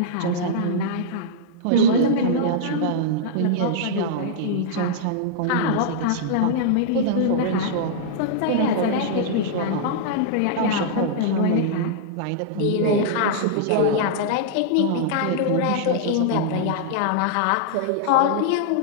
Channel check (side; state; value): both; different; correlation -0.02